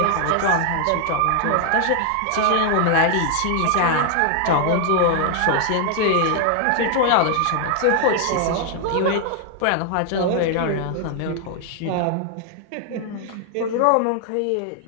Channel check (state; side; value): different; both; correlation 0.00